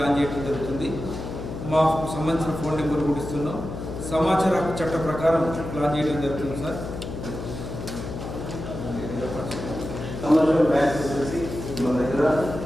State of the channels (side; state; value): left; noise; hum, 8 dB below the sound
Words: చేయడం జరుగుతుంది. మాకు సంబంధించిన ఫోన్ నెంబర్ కూడా ఇస్తున్నాం. సమాచార హక్కు చట్ట ప్రకారం ప్లాన్ చేయడం జరుగుతుంది సార్.